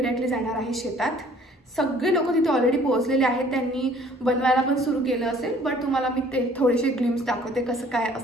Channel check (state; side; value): normal; both; correlation 0.55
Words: जाणार आहे शेतात। सगळे लोक तिथे ऑलरेडी पोहोचलेले आहेत, त्यांनी बनवायला पण सुरू केलं असेल, बट तुम्हाला मी ते थोडेसे ग्लिम्स दाखवते कसं काय